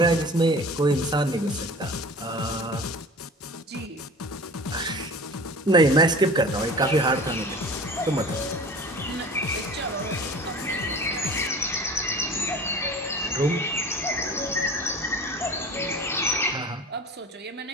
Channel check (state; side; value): normal; both; correlation 0.39